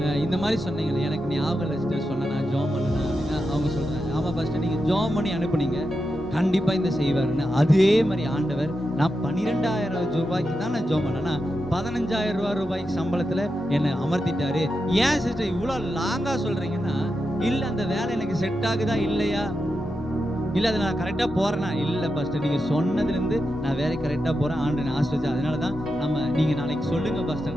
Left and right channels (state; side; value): normal; both; correlation 0.88